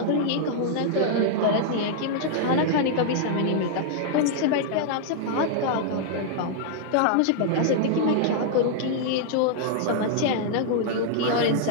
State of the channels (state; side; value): different; both; correlation -0.01